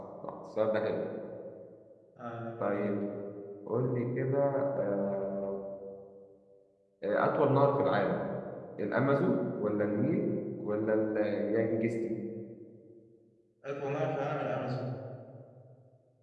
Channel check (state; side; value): identical; both; correlation 1.00